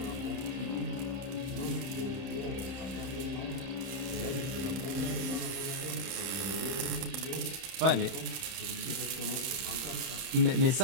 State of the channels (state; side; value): late; left; 31 ms